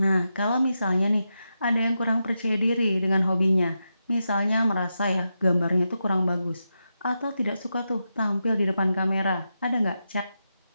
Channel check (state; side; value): inverted; both; correlation -0.88